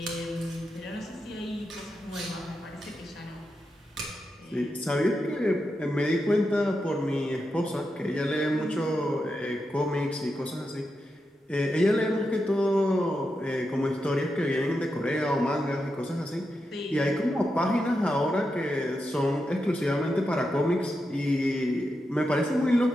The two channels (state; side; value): normal; both; correlation 0.87